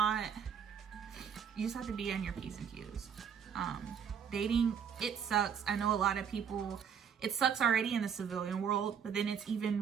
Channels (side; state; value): left; quieter; 7.5 dB